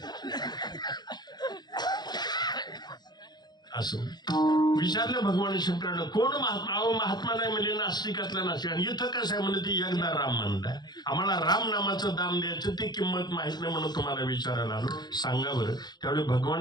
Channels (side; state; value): right; late; 0.20 ms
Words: असं विचारलं भगवान शंकरांना, कोण महात्मा नाही म्हणजे नास्तिकातला नास्तिक. आणि इथं कसं आहे म्हणजे ती एकदा राम म्हणलाय, आम्हाला राम नामाचं दाम द्यायचं, ती किंमत माहित नाही म्हणून तुम्हाला विचारायला आलो, सांगा बरं. त्यावेळी